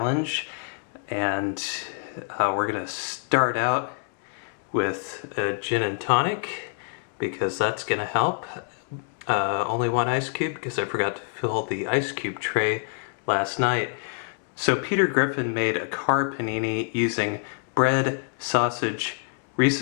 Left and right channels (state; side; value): silent; right; 55 dB below the other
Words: and we're going to start out with a gin and tonic because that's going to help. Only one ice cube because I forgot to fill the ice cube tray last night. So Peter Griffin made a car panini using bread, sausage,